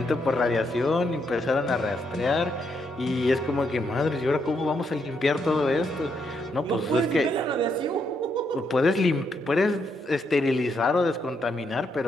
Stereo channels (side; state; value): both; normal; correlation 0.77